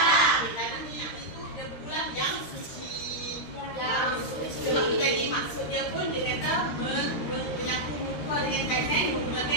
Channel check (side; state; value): right; late; 13 ms